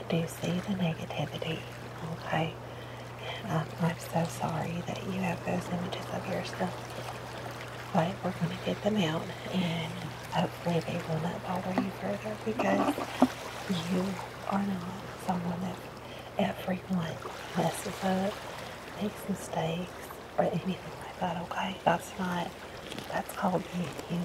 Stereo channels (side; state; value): both; identical; correlation 1.00